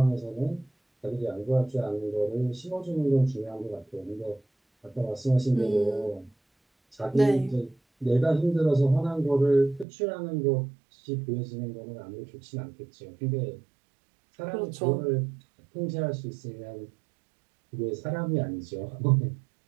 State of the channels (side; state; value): left; drops out; at 9.9 s